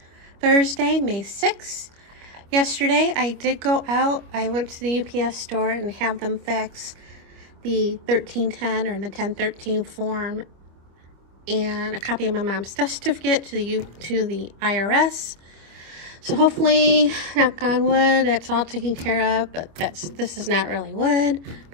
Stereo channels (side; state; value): left; late; 25 ms